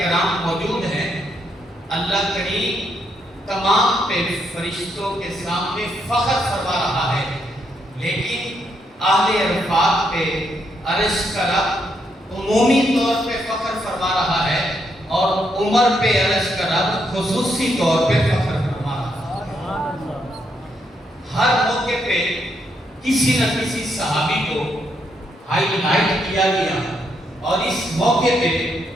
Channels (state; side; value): normal; both; correlation 0.77